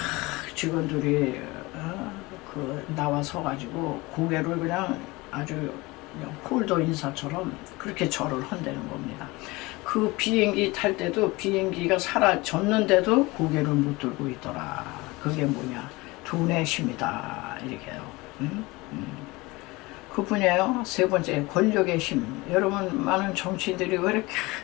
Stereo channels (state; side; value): quieter; right; 22.6 dB